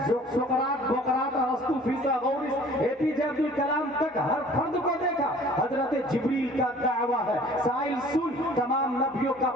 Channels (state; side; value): normal; both; correlation 0.50